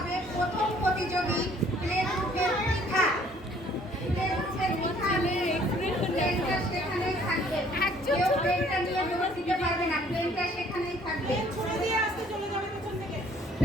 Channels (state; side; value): normal; both; correlation 0.59